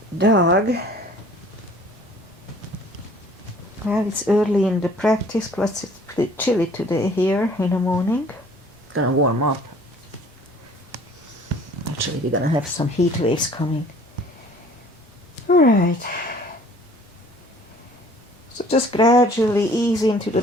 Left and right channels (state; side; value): normal; both; correlation 0.52